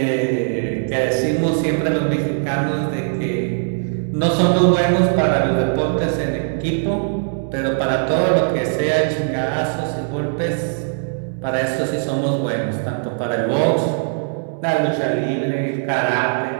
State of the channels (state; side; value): silent; left; digital silence